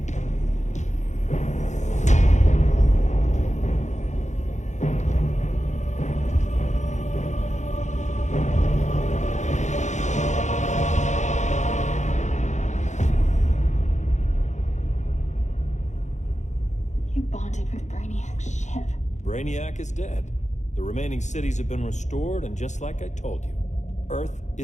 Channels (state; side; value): late; right; 0.34 ms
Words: Brainiac is dead. The remaining cities have been restored, and just like I told you, Earth